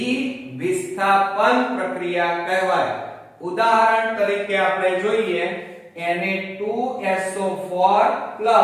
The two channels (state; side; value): identical; both; correlation 1.00